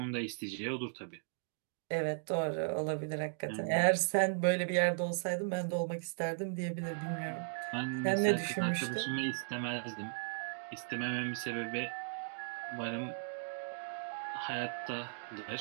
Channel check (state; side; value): silent; left; digital silence